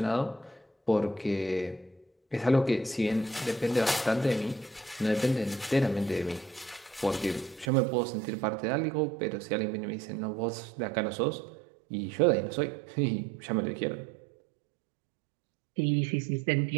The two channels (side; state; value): left; drops out; at 7.7 s